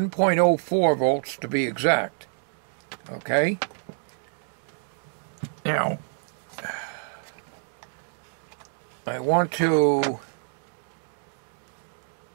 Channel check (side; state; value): left; silent; digital silence